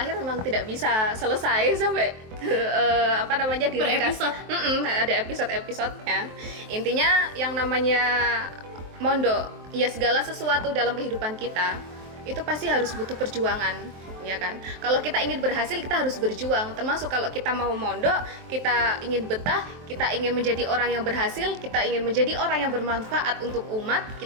memang tidak bisa selesai sampai diringkas. episode. Ada episode-episodenya. Intinya yang namanya mondok, ya segala sesuatu dalam kehidupan kita itu pasti harus butuh perjuangan, ya kan? Kalau kita ingin berhasil, kita harus berjuang. Termasuk kalau kita mau mondok, kita ingin betah, kita ingin menjadi orang yang berhasil, kita ingin menjadi orang yang bermanfaat untuk umat,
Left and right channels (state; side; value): late; left; 23 ms